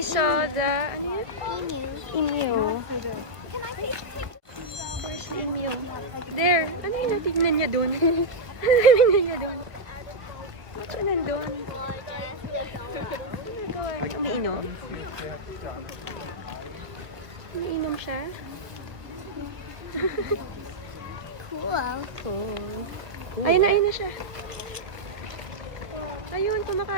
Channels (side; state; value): left; late; 1.2 ms